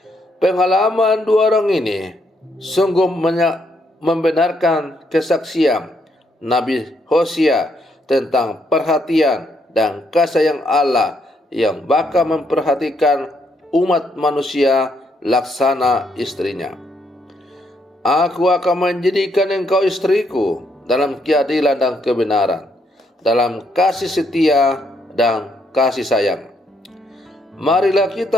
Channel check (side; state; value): both; normal; correlation 0.74